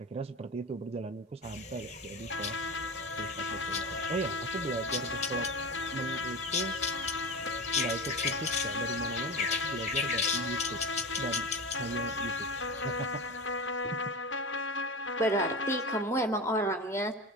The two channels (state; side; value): normal; both; correlation 0.26